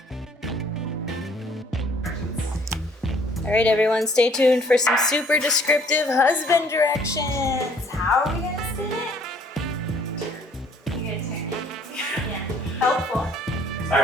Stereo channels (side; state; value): both; normal; correlation 0.59